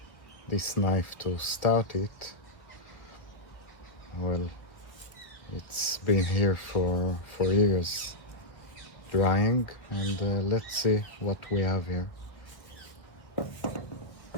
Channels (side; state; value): right; late; 1.7 ms